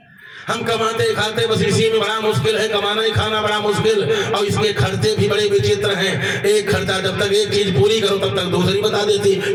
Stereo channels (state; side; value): identical; both; correlation 1.00